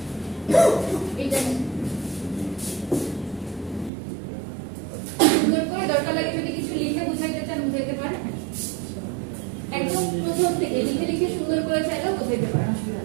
এটা সুন্দর করে দরকার লাগে যদি কিছু লিখে বুঝাইতে চান বুঝাইতে পারেন, একদম প্রথম থেকে লিখে লিখে সুন্দর করে চাইলেও বুঝাইতে পারেন, অসুবিধা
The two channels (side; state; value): left; drops out; at 3.9 s